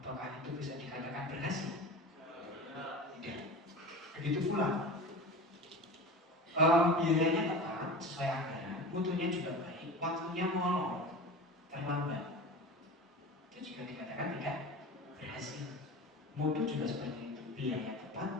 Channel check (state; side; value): normal; both; correlation 0.32